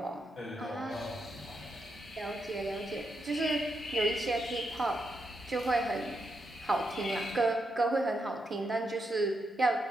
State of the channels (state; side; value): normal; both; correlation 0.82